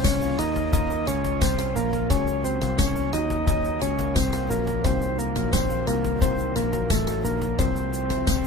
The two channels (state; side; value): normal; both; correlation 0.49